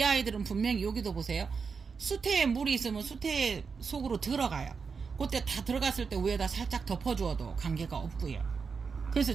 아이들은 분명히 여기도 보세요. 수태에 물이 있으면 수태 속으로 들어가요. 그때 다 들어갔을 때 위에다 살짝 덮어주어도 관계가 없고요. 그래서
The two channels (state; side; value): quieter; left; 5.4 dB